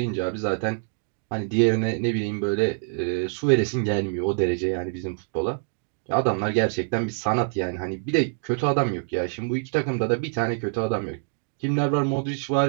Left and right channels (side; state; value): left; silent; digital silence